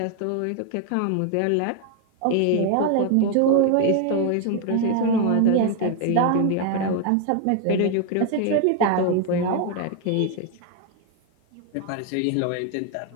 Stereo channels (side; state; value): both; different; correlation 0.00